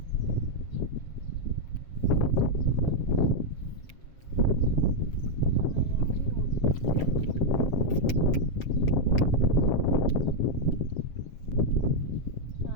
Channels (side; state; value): right; late; 7.4 ms